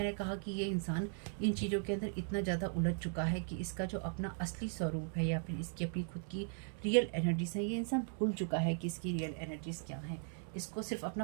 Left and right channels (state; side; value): silent; left; 52 dB below the other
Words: कहा कि ये इंसान इन चीज़ों के अंदर इतना ज़्यादा उलझ चुका है कि इसका जो अपना असली स्वरूप है या फिर इसकी अपनी खुद की रियल एनर्जीज है, ये इंसान भूल चुका है कि इसकी रियल एनर्जीज क्या हैं। इसको सिर्फ